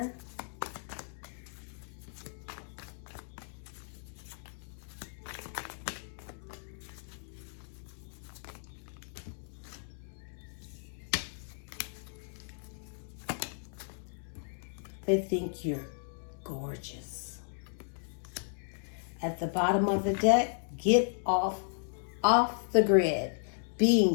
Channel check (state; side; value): silent; right; digital silence